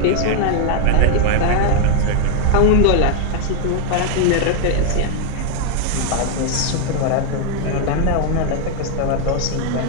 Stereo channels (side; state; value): both; different; correlation 0.00